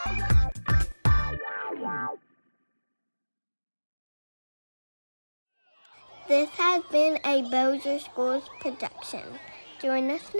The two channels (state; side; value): inverted; both; correlation -1.00